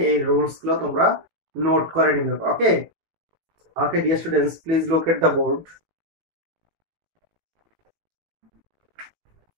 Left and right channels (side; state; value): left; late; 18 ms